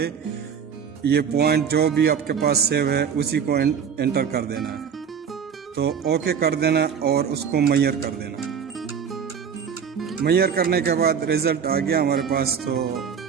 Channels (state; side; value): quieter; left; 7.2 dB